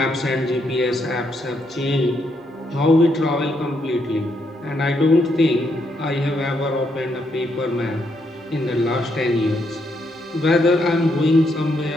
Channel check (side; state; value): both; normal; correlation 0.77